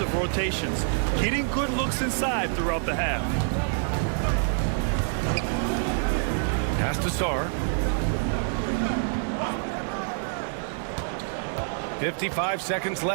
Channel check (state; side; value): silent; left; digital silence